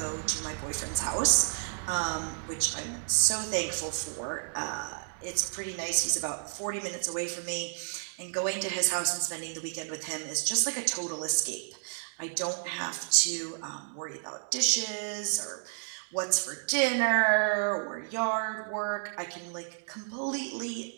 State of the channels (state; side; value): silent; left; digital silence